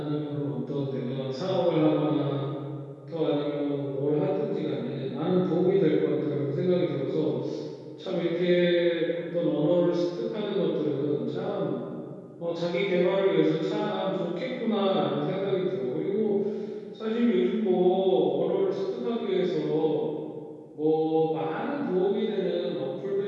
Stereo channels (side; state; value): both; identical; correlation 1.00